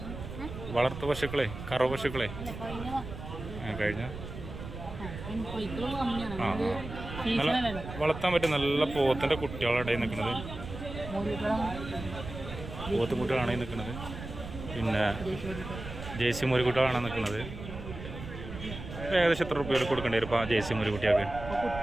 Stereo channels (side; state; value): right; noise; rumble, 10 dB below the sound